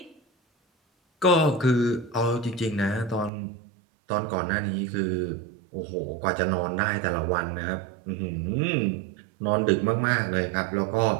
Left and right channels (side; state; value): left; drops out; at 3.3 s